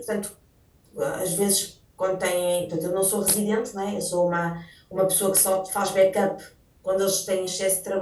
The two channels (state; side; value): identical; both; correlation 1.00